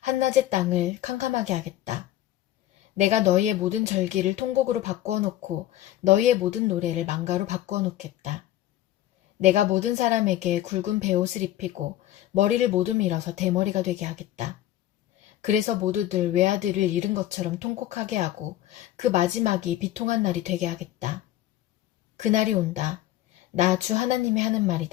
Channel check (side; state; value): right; quieter; 13.7 dB